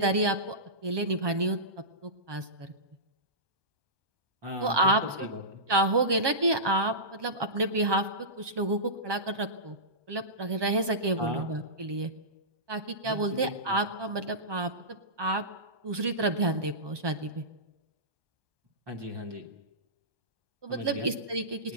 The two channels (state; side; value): late; left; 1.2 ms